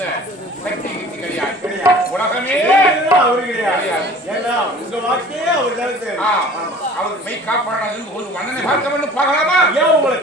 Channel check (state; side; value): normal; both; correlation 0.46